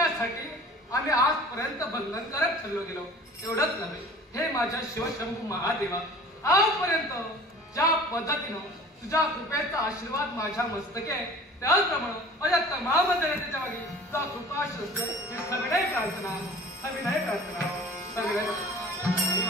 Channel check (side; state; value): both; normal; correlation 0.44